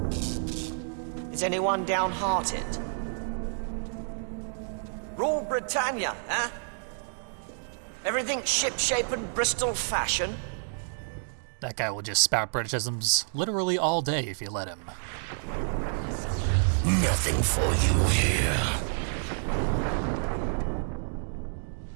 Is anyone downhearted? Rule Britannia, huh? Everything ship-shape and Bristol fashion? That guy will just spout Britishisms literally all day if you let him. Nothing for you here.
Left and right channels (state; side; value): silent; left; digital silence